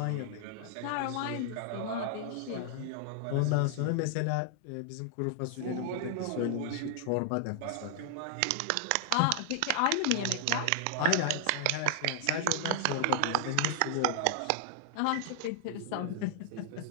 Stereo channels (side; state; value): both; different; correlation 0.00